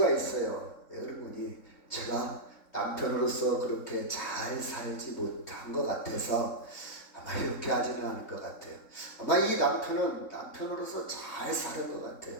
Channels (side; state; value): right; late; 3.6 ms